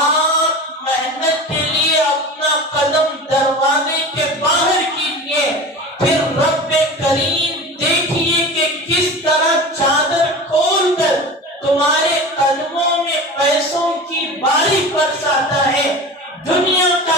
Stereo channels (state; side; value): normal; both; correlation 0.33